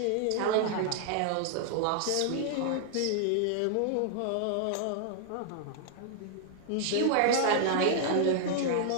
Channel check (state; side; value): different; both; correlation -0.01